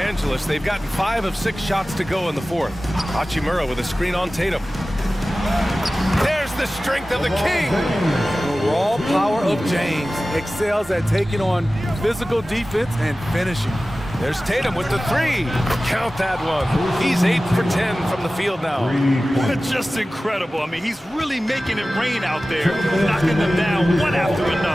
they've gotten 5 of 6 shots to go in the fourth. Hachimura with a screen on Tatum. There's the strength of the king. The raw power of James excels at taking on physical defense and finishing. There's Tatum with the 3. Count that one. He's 8 for 10 from the field now. Just incredible. I mean, he's really making it rain out there, knocking them down one after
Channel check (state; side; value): normal; both; correlation 0.96